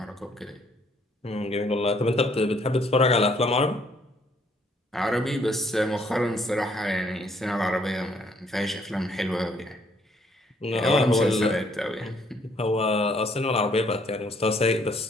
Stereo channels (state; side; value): normal; both; correlation 0.66